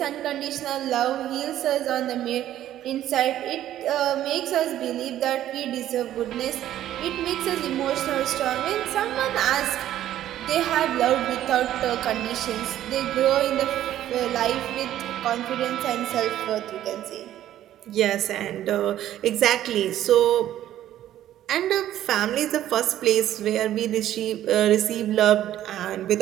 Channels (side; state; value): left; quieter; 12.4 dB